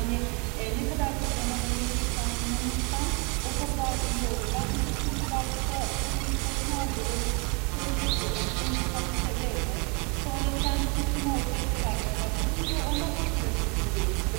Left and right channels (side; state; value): left; quieter; 31.8 dB